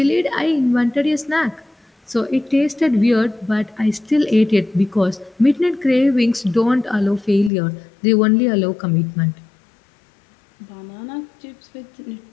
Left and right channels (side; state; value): right; drops out; at 7.5 s